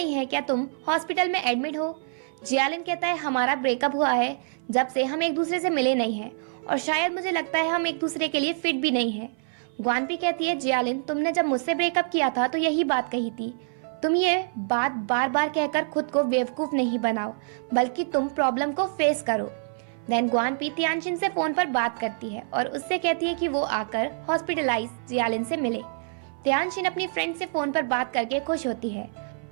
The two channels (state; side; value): silent; left; 55 dB below the other